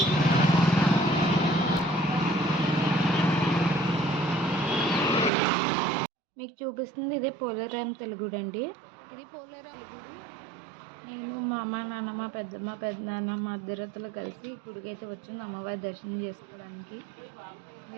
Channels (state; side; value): drops out; left; at 5.3 s